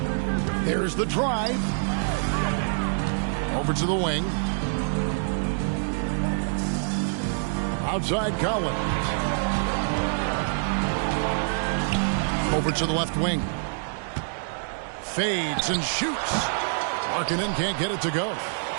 There's the drive. Over to the wing. Outside Collins. Over to the left wing. Fades and shoots. Markkanen can't get it to go.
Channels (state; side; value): silent; left; digital silence